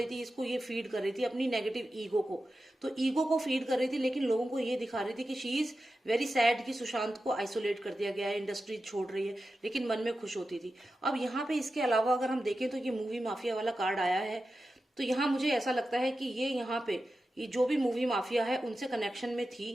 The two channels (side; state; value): both; normal; correlation 0.92